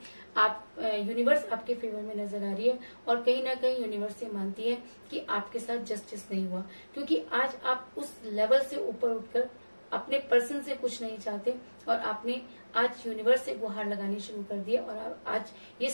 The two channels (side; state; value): both; inverted; correlation -1.00